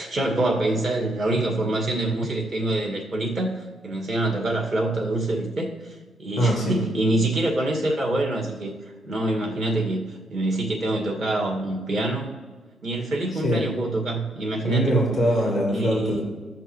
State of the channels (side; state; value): both; normal; correlation 0.74